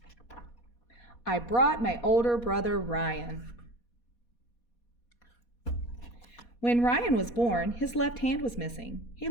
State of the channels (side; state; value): right; late; 4.2 ms